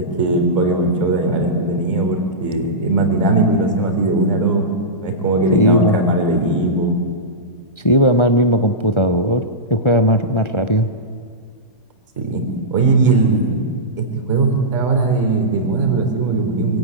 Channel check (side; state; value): right; late; 1.4 ms